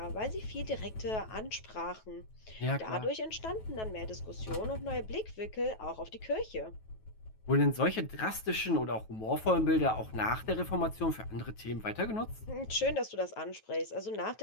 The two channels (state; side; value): late; right; 9.2 ms